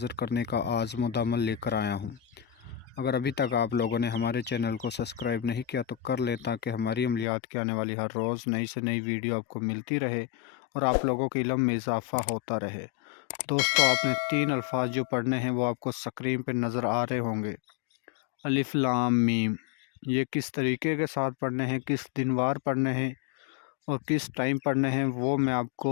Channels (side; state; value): right; drops out; at 7.2 s